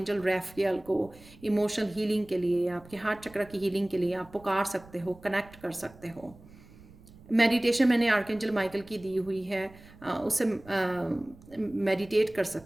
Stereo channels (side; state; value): right; noise; rumble, 22 dB below the sound